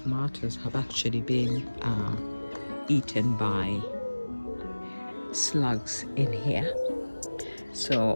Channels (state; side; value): inverted; both; correlation -1.00